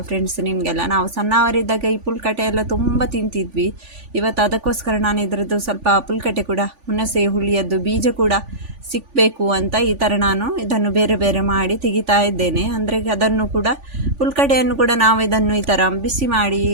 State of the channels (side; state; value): left; late; 3.5 ms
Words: ಫ್ರೆಂಡ್ಸ್ ನಿಮಗೆಲ್ಲ. ನಾವು ಸಣ್ಣವರಿದ್ದಾಗ ಈ ಪುಲ್ಕಟೆ ಎಲ್ಲ ತುಂಬ ತಿಂತಿದ್ವಿ. ಇವತ್ತು ಅದಕ್ಕೋಸ್ಕರ ನಾನು ಇದರದ್ದು ಸ್ವಲ್ಪ ಪುಲ್ಕಟೆ ಕೂಡ, ಹುಣಸೆ ಹುಳಿಯದ್ದು ಬೀಜ ಕೂಡ ಸಿಕ್ಕಬೇಕು ಅಂತ ಈ ಥರ ನಾನು ಇದನ್ನು ಬೇರೆ ಬೇರೆ ಮಾಡಿ ತೆಗಿತಾ ಇದ್ದೇನೆ. ಅಂದರೆ ಅದನ್ನು ಕೂಡ, ಪುಲ್ಕಟೆಯನ್ನು ಕೂಡ ನಾವು ಇದನ್ನು ಈ ಥರ ಬಿಸಿ ಮಾಡಿ,